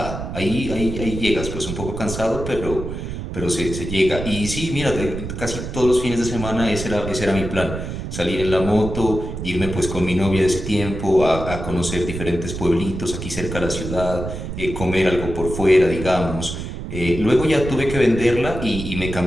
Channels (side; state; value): right; noise; rumble, 6 dB below the sound